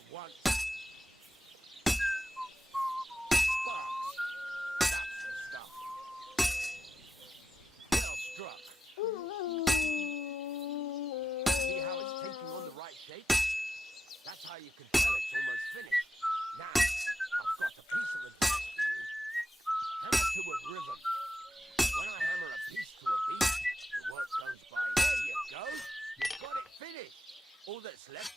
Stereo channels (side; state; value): both; normal; correlation 0.88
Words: want. Sparks. That's the stuff. Well struck. See how it's taking on the right shape? That's how you can tell it's almost finished. Now, I've got a piece of advice for you. Hammer to a rhythm. When I hammer a piece to a beat, the work goes by. There you go. You've got it finished. All that's